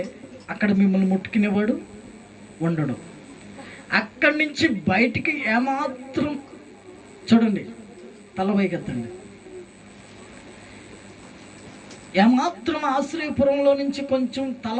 అక్కడ మిమ్మల్ని ముట్టుకునేవాడు ఉండడు. అక్కడి నుంచి బయటికి ఏమాత్రం చూడండి, తల పైకెత్తండి, ఏమాత్రం ఆశ్రయపురంలో నుంచి కొంచెం తల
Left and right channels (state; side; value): identical; both; correlation 1.00